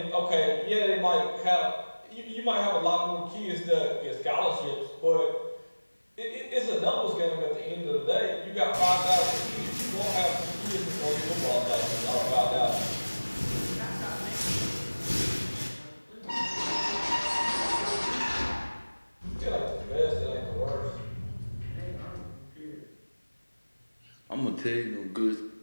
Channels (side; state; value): both; inverted; correlation -1.00